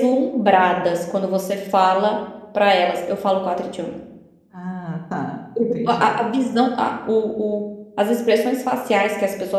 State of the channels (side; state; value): both; identical; correlation 1.00